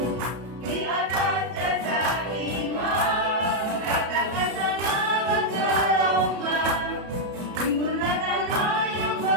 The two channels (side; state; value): left; late; 33 ms